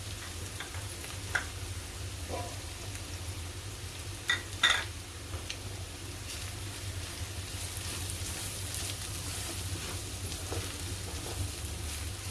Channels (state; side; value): identical; both; correlation 1.00